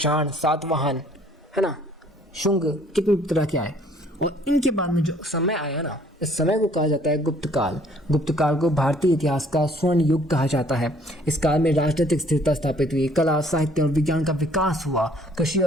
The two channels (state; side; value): normal; both; correlation 0.59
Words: सातवाहन, है ना, शुंग, कितने तरह के आए। और इनके बाद में जो समय आया ना, इस समय को कहा जाता है गुप्त काल को भारतीय इतिहास का स्वर्ण युग कहा जाता है। इस काल में राजनीतिक स्थिरता स्थापित हुई, कला, साहित्य और विज्ञान का विकास हुआ, कृषि